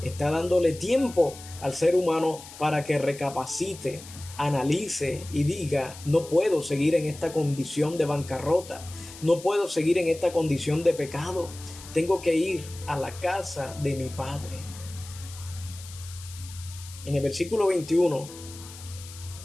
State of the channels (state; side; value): noise; left; hiss, 16 dB below the sound